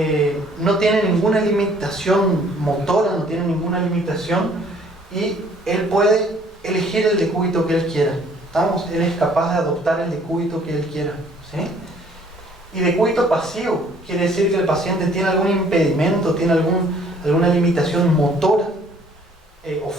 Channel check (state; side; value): normal; both; correlation 0.59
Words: no tiene ninguna limitación motora, no tiene ninguna limitación, y él puede elegir el decúbito que él quiera. ¿Estamos? Él es capaz de adoptar el decúbito que él quiera, ¿sí? Y decúbito pasivo quiere decir que el paciente tiene algún impedimento, tiene alguna limitación motora o